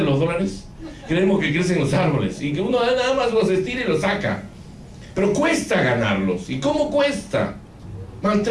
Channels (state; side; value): identical; both; correlation 1.00